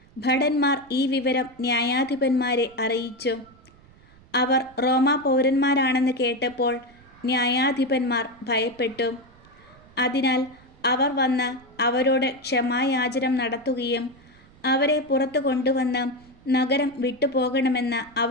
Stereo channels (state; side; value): noise; right; rumble, 27 dB below the sound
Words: ഭടന്മാർ ഈ വിവരം ന്യായാധിപന്മാരെ അറിയിച്ചു. അവർ റോമാ പൗരന്മാരാണെന്ന് കേട്ടപ്പോൾ ന്യായാധിപന്മാർ ഭയപ്പെട്ടു. അതിനാൽ അവർ വന്ന് അവരോട് ക്ഷമായാചനം നടത്തുകയും അവരെ പുറത്തു കൊണ്ടുവന്ന് നഗരം വിട്ടുപോകണമെന്ന്